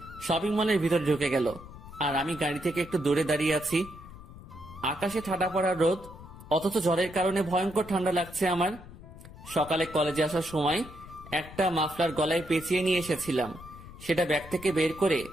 শপিং মলের ভিতর ঢুকে গেল, আর আমি গাড়ি থেকে একটু দূরে দাঁড়িয়ে আছি। আকাশে ঠাডা পড়া রোদ, অথচ ঝড়ের কারণে ভয়ঙ্কর ঠান্ডা লাগছে আমার। সকালে কলেজে আসার সময় একটা মাফলার গলায় পেঁচিয়ে নিয়ে এসেছিলাম। সেটা ব্যাগ থেকে বের করে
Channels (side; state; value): left; noise; rumble, 17 dB below the sound